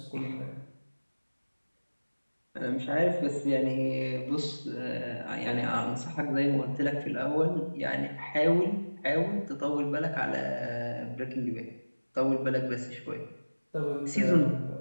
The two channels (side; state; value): both; inverted; correlation -1.00